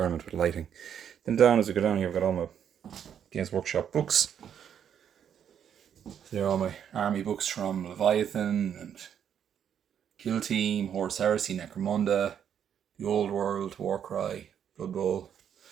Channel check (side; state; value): left; quieter; 8.7 dB